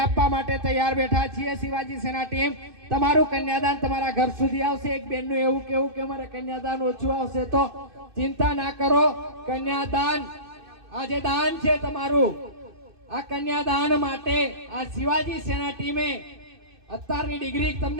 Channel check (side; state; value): left; late; 2.6 ms